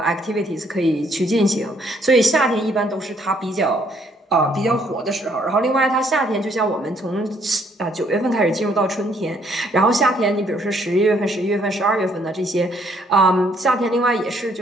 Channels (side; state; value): both; normal; correlation 0.67